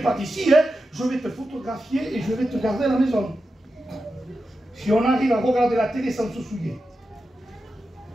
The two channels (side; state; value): both; normal; correlation 0.90